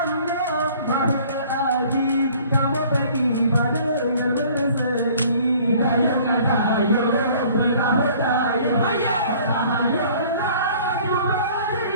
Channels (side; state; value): both; inverted; correlation -0.53